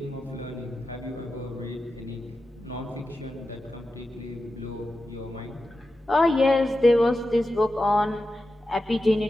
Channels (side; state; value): both; normal; correlation 0.91